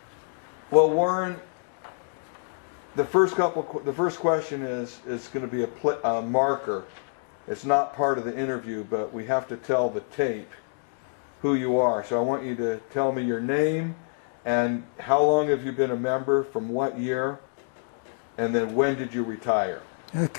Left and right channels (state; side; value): silent; right; digital silence